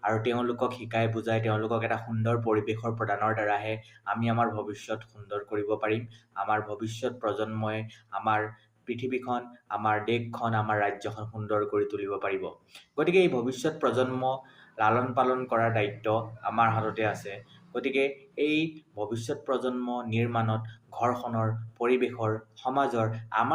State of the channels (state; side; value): identical; both; correlation 1.00